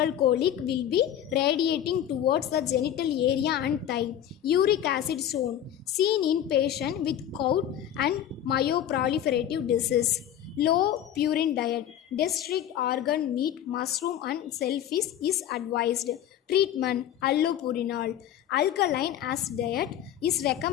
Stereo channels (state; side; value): quieter; right; 10.8 dB